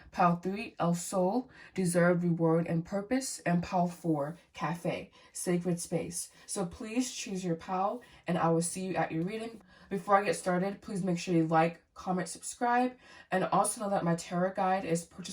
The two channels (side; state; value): both; identical; correlation 1.00